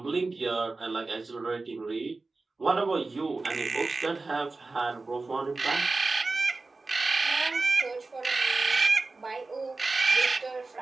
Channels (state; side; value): quieter; left; 3.6 dB